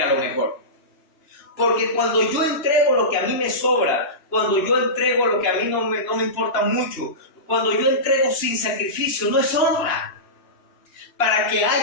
lo mejor. Porque cuando yo entrego lo que a mí me sobra, cuando yo entrego lo que a mí no me importa mucho, cuando yo entrego sin sacrificio, no es honra. Para que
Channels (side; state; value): right; late; 2.9 ms